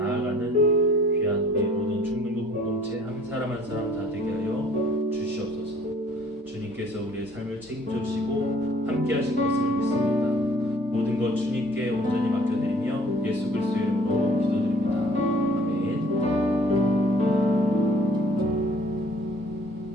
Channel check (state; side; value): normal; both; correlation 0.55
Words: 귀한 우리 모든 중등부 공동체 한 사람 한 사람 다 되게 하여 주시옵소서. 주님께서 우리의 삶을 책임져 주시고 함께 하실 것을 믿습니다. 모든 것 주님께 온전히 맡겨드리며 예수 그리스도의 이름으로 기도드립니다. 아멘.